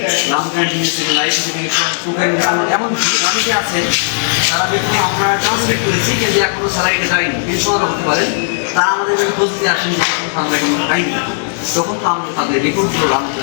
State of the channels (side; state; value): right; silent; digital silence